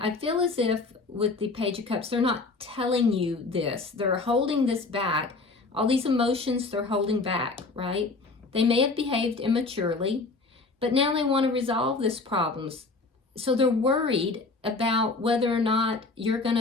feel as if with the Page of Cups, they're not telling you this. They're holding this back. All these emotions they're holding back, right? They may have behaved immaturely, but now they want to resolve this problems. So they're worried about whether or not you're going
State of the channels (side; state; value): right; quieter; 3.7 dB